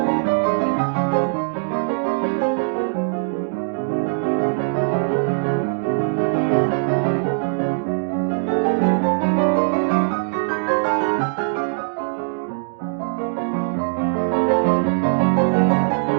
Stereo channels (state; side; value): silent; left; digital silence